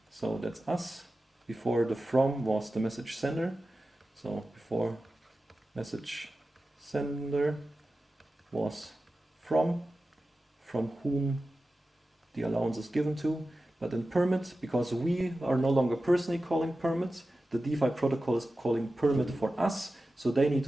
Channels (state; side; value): normal; both; correlation 0.94